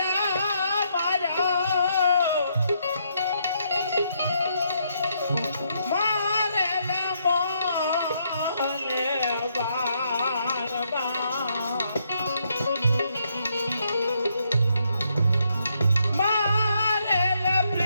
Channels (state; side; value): inverted; both; correlation -0.75